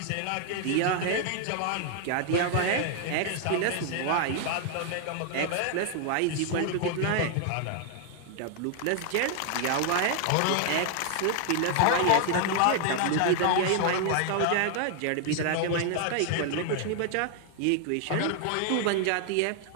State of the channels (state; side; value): different; both; correlation 0.00